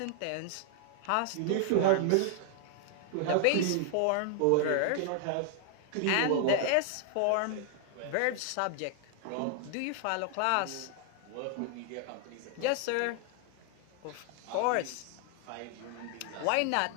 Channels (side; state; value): both; different; correlation 0.00